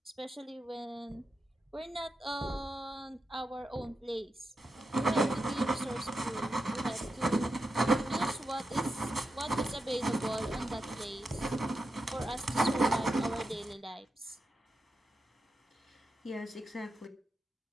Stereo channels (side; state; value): both; normal; correlation 0.88